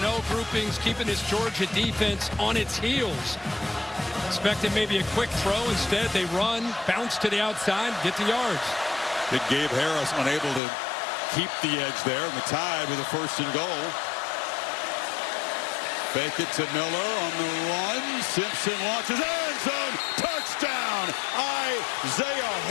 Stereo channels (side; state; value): right; drops out; at 10.6 s